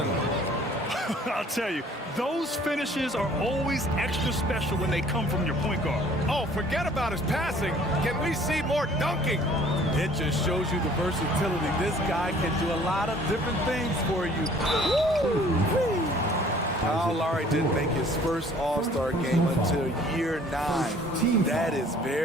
I'll tell you, those finishes are always extra special when they come from your point guard. Oh, forget about his passing. Can we see more dunking? It just shows you the versatility. This guy can do a lot of different things for you. Woo! Kyle Lowry didn't make his first All-Star game until year 9. That is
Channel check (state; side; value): normal; both; correlation 0.55